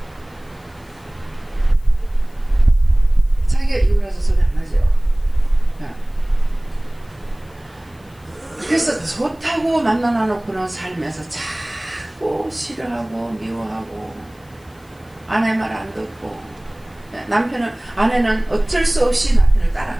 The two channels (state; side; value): noise; left; hiss, 30 dB below the sound